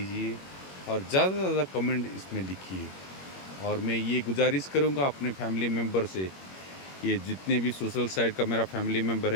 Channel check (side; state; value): right; late; 21 ms